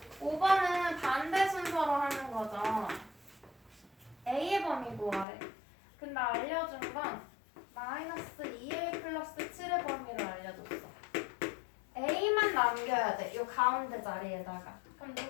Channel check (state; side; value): drops out; right; at 5.2 s